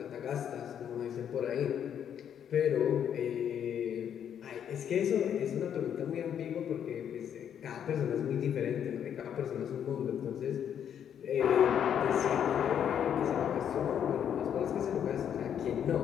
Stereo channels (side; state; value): right; quieter; 8.9 dB